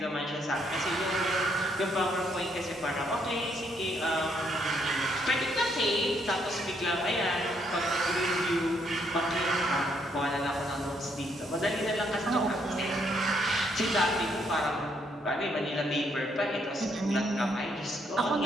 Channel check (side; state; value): both; normal; correlation 0.72